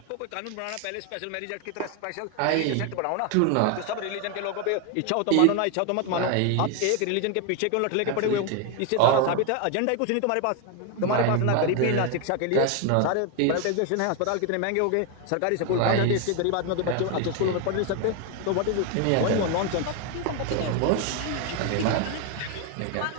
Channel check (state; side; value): different; both; correlation 0.01